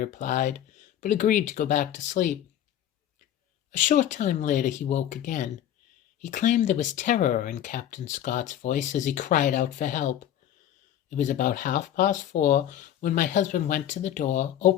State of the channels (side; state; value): right; quieter; 11.1 dB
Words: but agreed to go back to sleep. A short time later he woke again. He claimed there was terror in Captain Scott's voice as he cried out for help. It was about 4:30 when my husband went to the door,